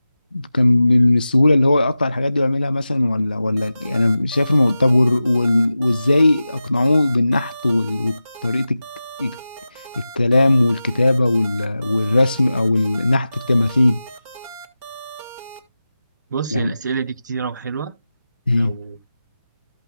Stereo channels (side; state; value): both; inverted; correlation -0.94